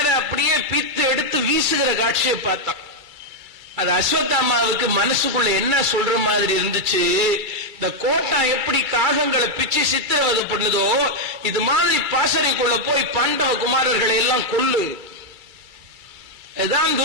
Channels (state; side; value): late; left; 2.3 ms